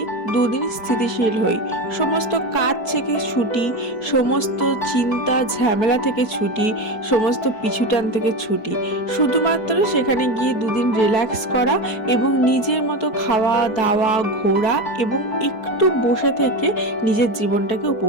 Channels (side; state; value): right; late; 4.6 ms